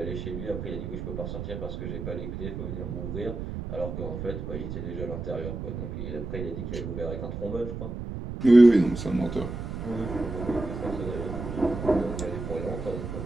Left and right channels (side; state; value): right; noise; rumble, 6 dB below the sound